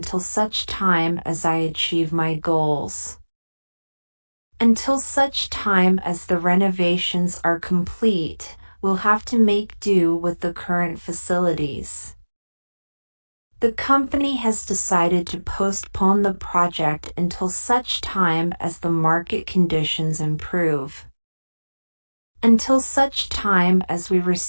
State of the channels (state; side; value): inverted; both; correlation -1.00